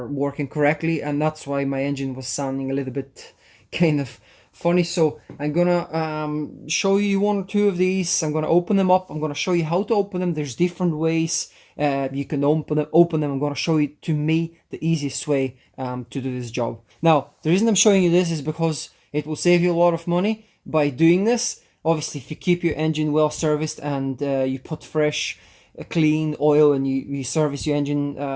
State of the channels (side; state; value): both; identical; correlation 1.00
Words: working correctly, and that's why my engine was sounding a little bit kind of funny. So I'm gonna show you 1 or 2 of these. I'm gonna open them up. I'm gonna show you how to open them. There's different ways you can open them. I'm gonna show you, to me, the easiest way to do this job. Now, the reason I'm showing you this is because it will save you a lot of money by doing this. Obviously, if you keep your engine well serviced and you put fresh clean oil, and you service your engine